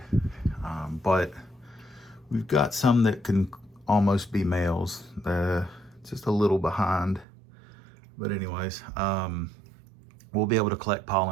but we've got some that can almost be males. Just a little behind, but anyways, we'll be able to collect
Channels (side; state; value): left; drops out; at 7.2 s